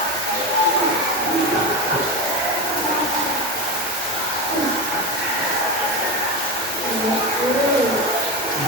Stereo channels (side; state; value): both; normal; correlation 0.21